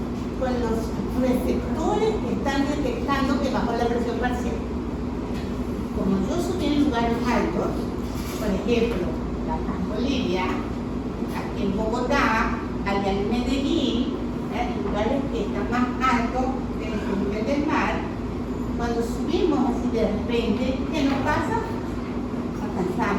receptores que están detectando que bajó la presión parcial? lugares altos, por ejemplo, La Paz, Bolivia, aquí en Bogotá, allá en Medellín, lugares que están más altos que el nivel del mar, cuando subimos así de repente, ¿qué nos pasa?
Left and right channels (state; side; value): identical; both; correlation 1.00